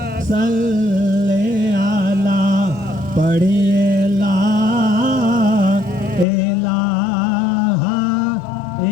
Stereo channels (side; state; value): right; drops out; at 6.2 s